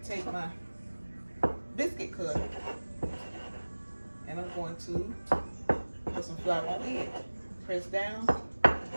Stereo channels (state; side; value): inverted; both; correlation -1.00